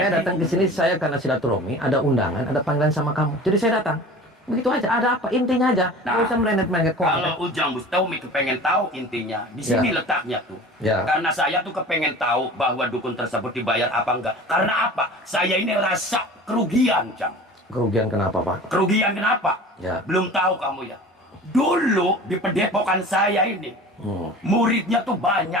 Jadi- datang ke sini saya karena silaturahmi, ada undangan, ada panggilan sama kamu. Jadi saya datang. Begitu aja, ada apa? Intinya aja. Nggak Nah, usah merendet-merendet konten. Kalau Ujang Bustomi kepengen tahu intinya, di sini Ya. letaknya tuh. Ya. Karena saya tuh kepengen tahu bahwa dukun tersebut dibayar apa enggak. Karena apa? Saya ini rasa kerugian, Jang. Kerugian kenapa, Pak? Kerugian kenapa? Ya. Belum tahu kamu ya. Dulu di pendepokan saya ini, muridnya tuh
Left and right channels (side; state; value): both; normal; correlation 0.40